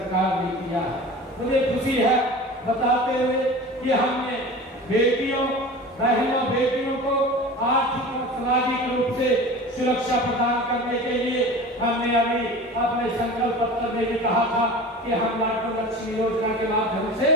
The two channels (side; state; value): both; normal; correlation 0.36